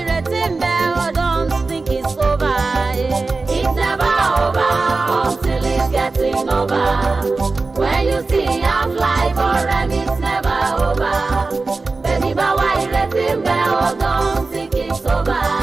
When you see half life or it's never over. Baby, but why you let him go? Don't think it's over.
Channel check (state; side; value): quieter; left; 3.8 dB